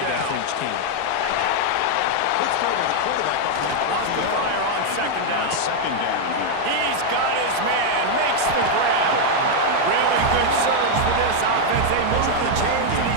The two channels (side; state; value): both; different; correlation 0.00